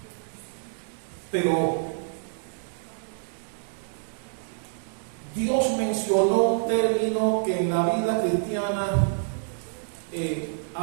Pero Dios mencionó un término que en la vida cristiana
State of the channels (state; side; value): silent; left; digital silence